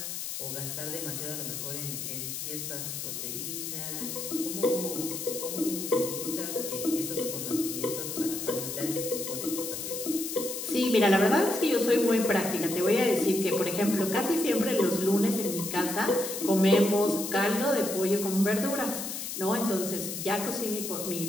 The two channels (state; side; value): noise; left; hiss, 5 dB below the sound